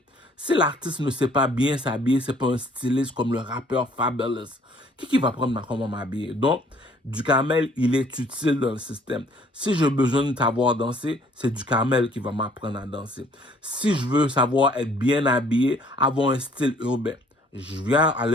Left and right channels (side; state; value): both; normal; correlation 0.59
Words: Si l'artiste ne sait pas bien s'habiller, c'est pas un styliste comme le rappeur Fabulous, qui va apprendre comment m'habiller? Donc, Duhamel, il est utile dans le système. Si j'ai besoin de savoir danser, c'est Duhamel qui va m'apprendre à danser. Si je veux savoir être bien habillé, avoir un style urbain, je viens